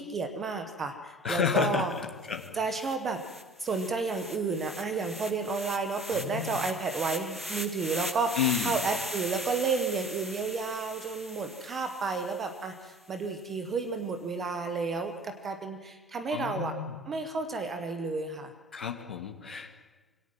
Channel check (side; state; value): both; normal; correlation 0.47